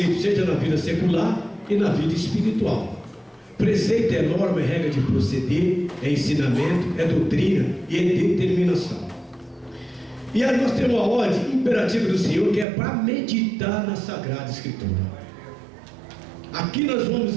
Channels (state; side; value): drops out; left; at 12.7 s